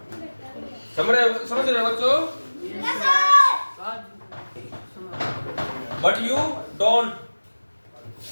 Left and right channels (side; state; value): both; inverted; correlation -1.00